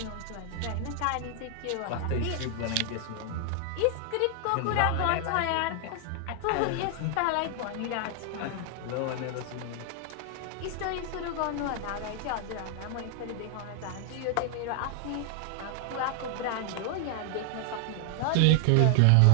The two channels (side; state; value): both; different; correlation 0.00